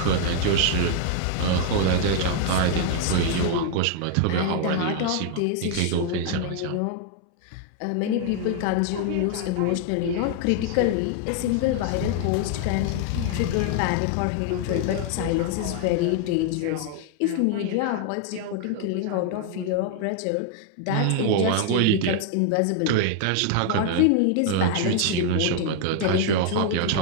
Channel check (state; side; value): different; both; correlation 0.00